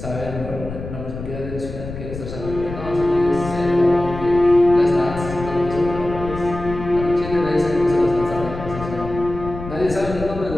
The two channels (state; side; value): noise; left; rumble, 9 dB below the sound